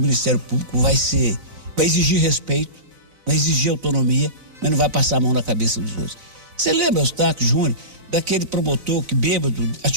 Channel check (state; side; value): late; left; 4.0 ms